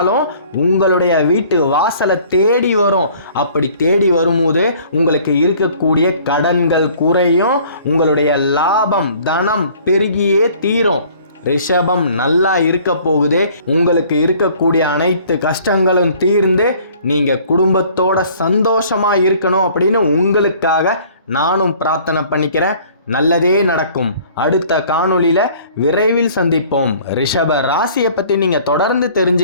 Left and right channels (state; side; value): inverted; both; correlation -0.54